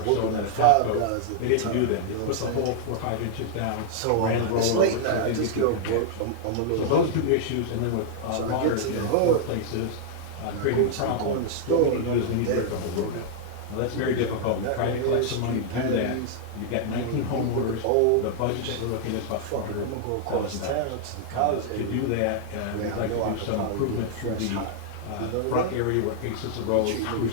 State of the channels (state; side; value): different; both; correlation -0.01